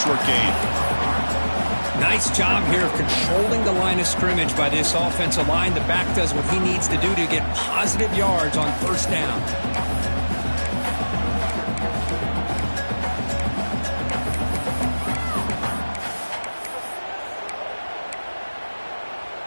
gain. Nice job here of controlling the line of scrimmage by this offensive line. The back does what he needs to do to get positive yards on first down.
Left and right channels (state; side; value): inverted; both; correlation -1.00